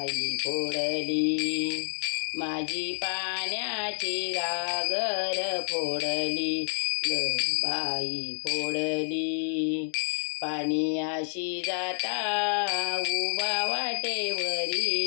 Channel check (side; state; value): right; silent; digital silence